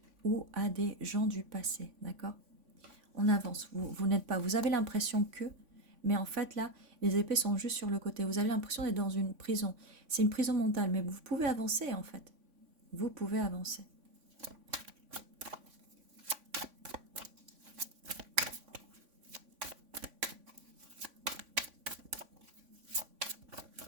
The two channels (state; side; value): late; left; 3.5 ms